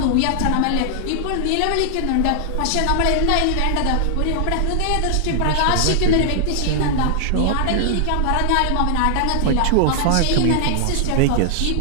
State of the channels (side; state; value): both; different; correlation -0.01